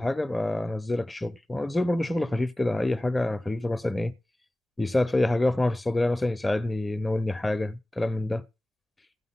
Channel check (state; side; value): normal; both; correlation 0.97